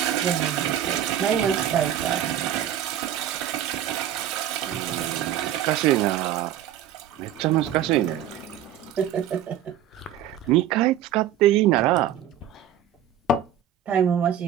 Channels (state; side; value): quieter; left; 10.2 dB